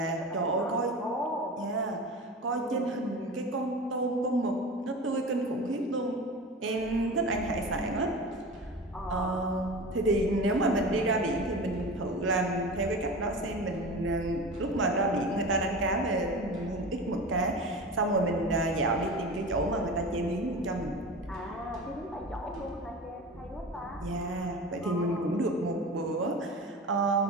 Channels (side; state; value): both; normal; correlation 0.32